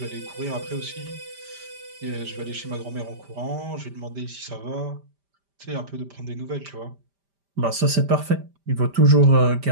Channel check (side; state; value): left; late; 5.1 ms